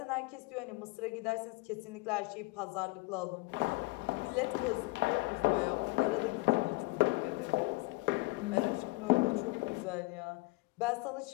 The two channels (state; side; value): quieter; right; 23.1 dB